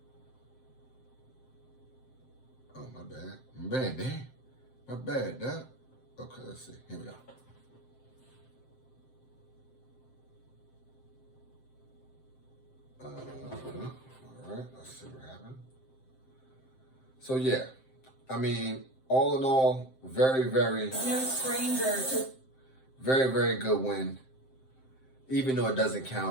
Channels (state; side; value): late; right; 7.7 ms